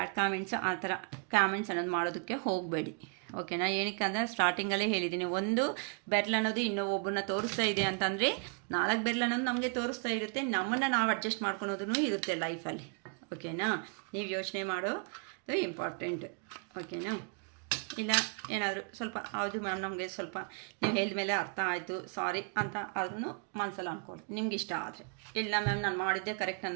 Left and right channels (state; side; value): quieter; left; 38.7 dB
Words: ಕಾಮೆಂಟ್ಸ್ ಆ ಥರ ಕಾಮೆಂಟ್ಸ್ ಅನ್ನೋದು ಮಾಡೋದಕ್ಕೆ ಹೋಗಬೇಡಿ, ಓಕೆನಾ? ಏನಕ್ಕೆ ಅಂದರೆ ಸ್ಟಾರ್ಟಿಂಗಲ್ಲೇ ಹೇಳಿದ್ದೀನಿ, ಒಂದು ಬೆರ್ಲ್ ಅನ್ನೋದು ಇನ್ನೊಬ್ಬರನ್ನ ತೋರಿಸ್ತಾ ಇದೆ ಅಂತಂದರೆ 4 ಬೆರ್ಲ್ ಅನ್ನೋದು ನಮಗೆ ತೋರಿಸ್ತಾ ಇರುತ್ತೆ, ನಮ್ಮನ್ನು ನಾವು ಅಡ್ಜಸ್ಟ್ ಮಾಡ್ಕೊಳೋದೂ ಇರುತ್ತೆ ಲೈಫಲ್ಲಿ, ಓಕೆನಾ? ನೀವು ಯೋಚನೆ ಮಾಡೋದು ಇಂಪಾರ್ಟೆಂಟ್, ಓಕೆನಾ? ಇಲ್ಲ ಏನಾದರೂ ಸ್ವಲ್ಪ ಹೌದು ಮ್ಯಾಮ್ ನಮಗೆ ಸ್ವಲ್ಪ ನೀವು ಹೇಳಿದ ಮೇಲೆ ಅರ್ಥ ಆಯಿತು ಸಾರಿ ಅಂತ ಆದ್ರೂ ಮನಸ್ಸಲ್ಲಿ ಅಂದ್ಕೊಳ್ಳಿ, ನಿಮ್ಗೆ ಇಷ್ಟ ಆದರೆ. ಇಲ್ಲ ಮ್ಯಾಮ್ ನಾನು ಮಾಡಿದ್ದೆ ಕರೆಕ್ಟ್